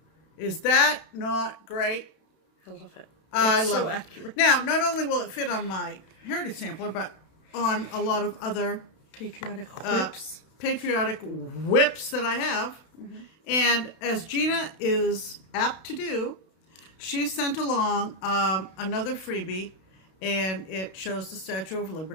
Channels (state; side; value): late; right; 32 ms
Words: Is that not great? I love it. I It's love so it. accurate. Now, not only will it fit on my Heritage Sampler, but on a lot of other Patriotic whips. patriotic whips that I have. And as Gina is apt to do, she sent along another freebie, and it shows the Statue of